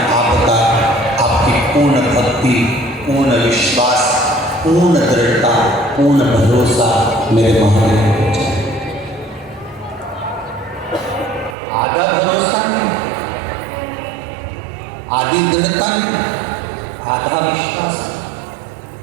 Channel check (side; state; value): left; drops out; at 11.6 s